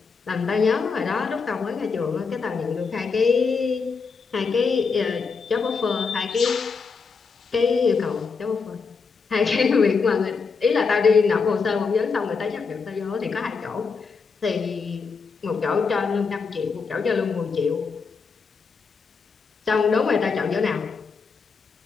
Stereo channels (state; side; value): quieter; right; 5.1 dB